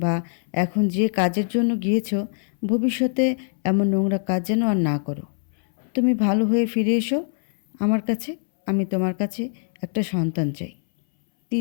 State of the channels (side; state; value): right; silent; 63 dB below the other